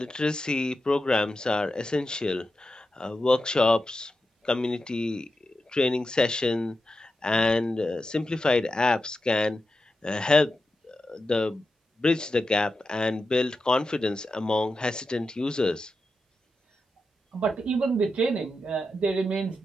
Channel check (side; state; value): both; normal; correlation 0.89